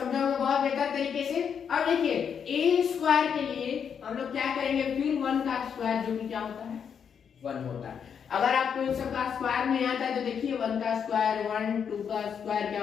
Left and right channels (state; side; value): quieter; right; 7.3 dB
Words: होंगे बहुत बेहतर तरीके से। अब देखिए ए स्क्वायर के लिए हम लोग क्या करेंगे? फिर 1 का स्क्वायर जो कि क्या होता है 1 होता है। अगर आपको इन सब का स्क्वायर नहीं आता है तो देखिए 1 का स्क्वायर 1, 2 का स्क्वायर